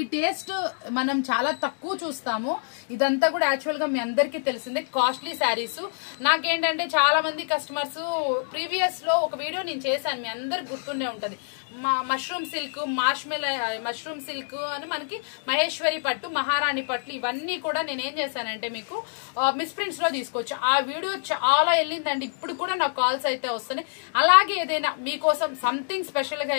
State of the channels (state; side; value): silent; right; digital silence